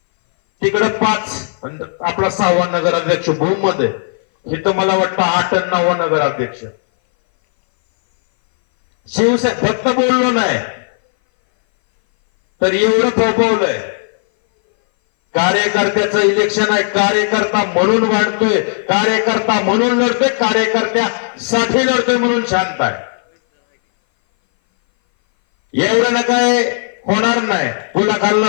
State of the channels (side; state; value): right; silent; 60 dB below the other